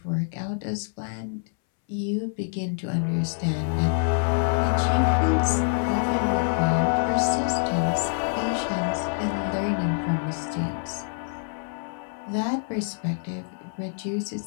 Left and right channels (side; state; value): right; silent; 61 dB below the other